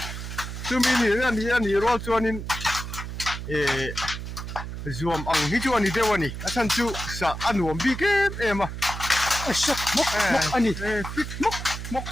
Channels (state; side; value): noise; right; hum, 7 dB below the sound